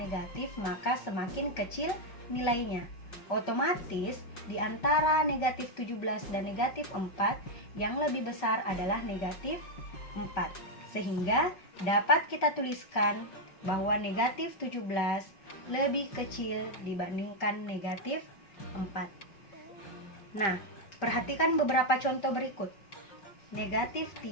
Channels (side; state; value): right; late; 5.2 ms